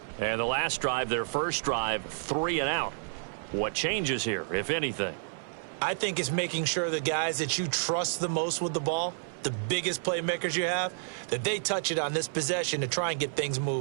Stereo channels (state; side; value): silent; left; 58 dB below the other